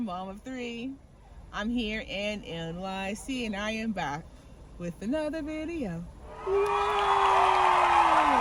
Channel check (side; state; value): both; identical; correlation 1.00